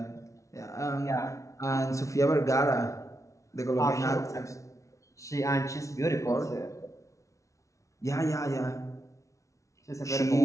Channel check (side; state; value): right; late; 0.15 ms